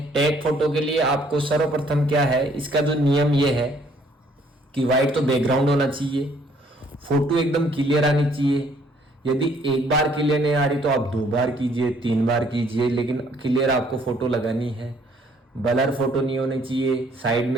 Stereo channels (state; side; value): normal; both; correlation 0.63